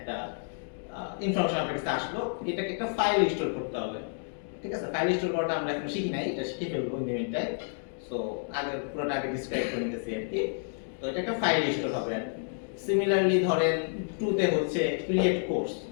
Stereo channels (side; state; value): right; silent; digital silence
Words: ইনফরমেশন আপনার কাছে আসলো, এটাকে একটা ফাইল স্টোর করতে হবে। ঠিক আছে, ফাইল স্টোর করাটা আমরা এখন শিখি নাই, এটা শিখে ফেলবো in the meantime. So আগে পুরোটা আগে ডিসক্রাইব করে নিতেছি আর কি। তো এটা একটা ফাইল স্টোর হবে আর কি। সিমিলারলি ধরেন 2 তে হচ্ছে ক্রিয়েট কোর্স,